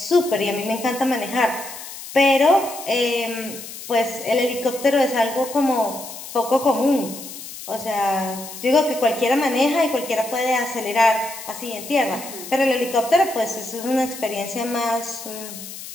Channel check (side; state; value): left; noise; hiss, 12 dB below the sound